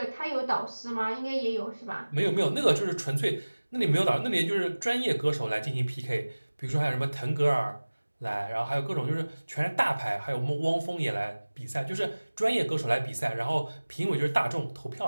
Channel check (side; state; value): both; inverted; correlation -1.00